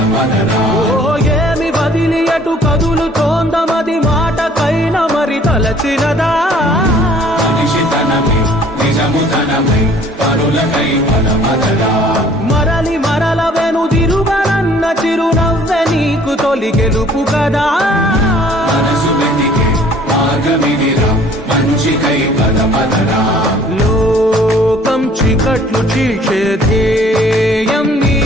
ఏమి వదిలి అటు కదులుతోందమది మాటకైన మరి తలచినదా మనిషితనమై నిజముతనమై పరులకై పదపదరా మరలి మరల వెనుదిరుగనన్న చిరునవ్వె నీకు తొలి గెలుపు కదా మనసు వెతికే మార్గమిదిరా మంచికై పదపదరా లోకం చీకట్లు చీల్చే ధ్యేయం నీ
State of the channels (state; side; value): normal; both; correlation 0.55